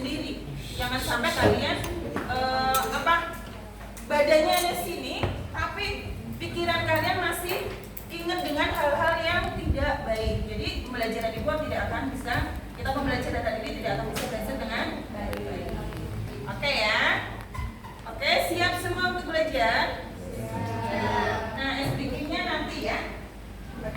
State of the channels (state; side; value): identical; both; correlation 1.00